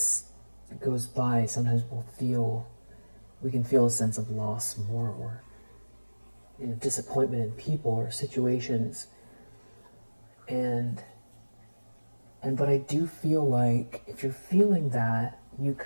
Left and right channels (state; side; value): inverted; both; correlation -1.00